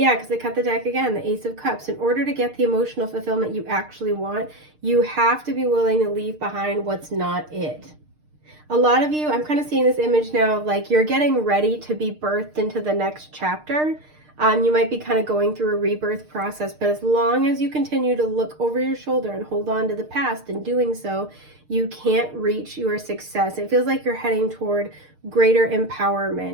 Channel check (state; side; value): late; left; 6.6 ms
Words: because I cut the deck again, the Ace of Cups. In order to get the emotional fulfillment you actually want, you have to be willing to leave behind what's not it. A lot of you, I'm kind of seeing this image now of like, you're getting ready to be birthed into the next chapter. You might be kind of going through a rebirth process, but as long as you continue to look over your shoulder and hold on to the past, and doing so, you can't reach your success. It feels like you're heading toward greater